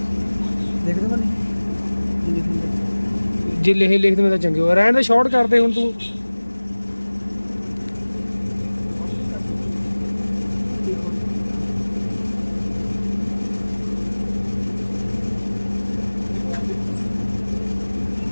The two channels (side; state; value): both; inverted; correlation -1.00